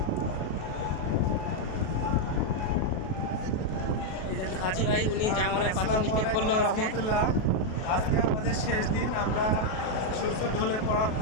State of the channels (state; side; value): late; right; 37 ms